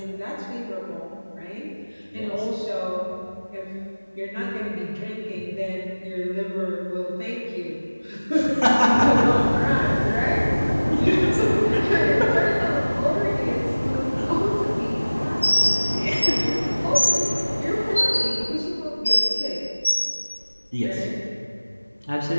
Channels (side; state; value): both; inverted; correlation -1.00